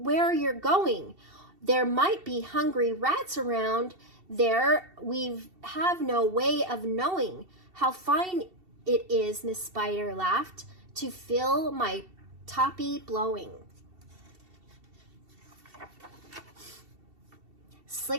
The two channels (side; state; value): left; late; 2.7 ms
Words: you're going. There might be hungry rats around there. We have no way of knowing. How fine it is," Miss Spider laughed, "to feel my toppy blowing."